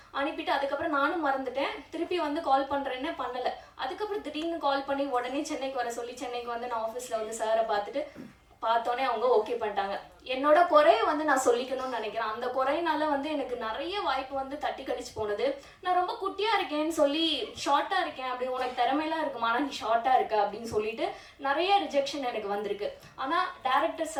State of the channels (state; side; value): identical; both; correlation 1.00